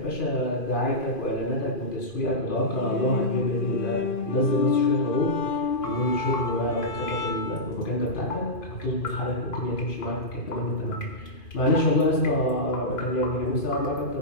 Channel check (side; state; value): right; late; 2.4 ms